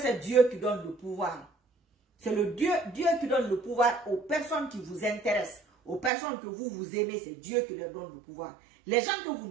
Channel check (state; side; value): drops out; left; at 6.1 s